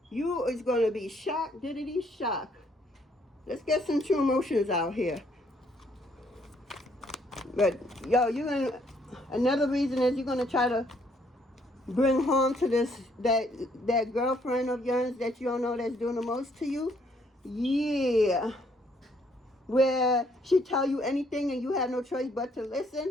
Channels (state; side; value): normal; both; correlation 0.68